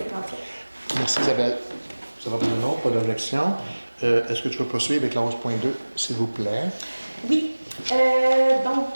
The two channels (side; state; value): both; inverted; correlation -1.00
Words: Merci, Isabelle. Ça va pour le nom, pas d'objection. Est-ce que tu peux poursuivre avec la 11.2, s'il vous plaît? Oui. Oui, je